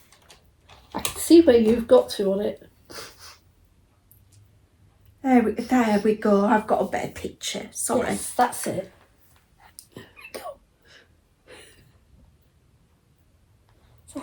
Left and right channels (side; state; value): both; identical; correlation 1.00